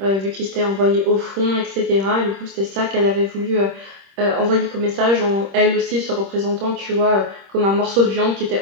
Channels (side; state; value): left; late; 26 ms